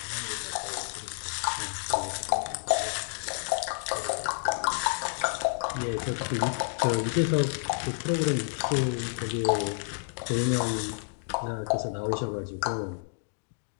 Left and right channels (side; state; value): right; silent; digital silence